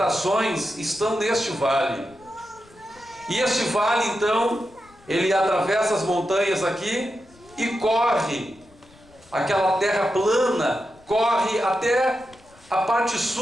estão neste vale. E este vale então, ele atravessa as montanhas aqui e corre, aquela terra plana, corre até a parte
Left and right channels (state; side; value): noise; left; rumble, 28 dB below the sound